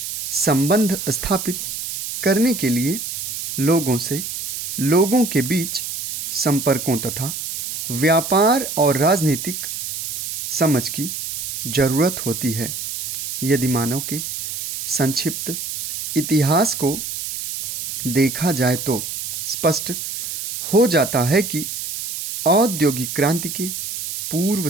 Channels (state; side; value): noise; right; hiss, 5 dB below the sound